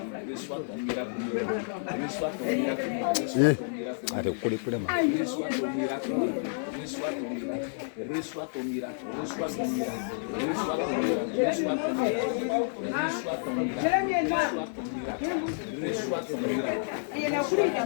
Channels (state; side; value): silent; right; 58 dB below the other